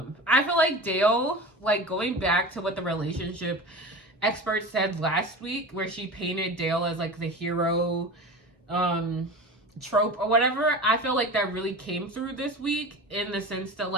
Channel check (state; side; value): normal; both; correlation 0.31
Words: feel like Dale, like, going back to what the relationship expert said last week, where she painted Dale as, like, the hero trope or whatever, I feel like that really came through this week, in the sense that,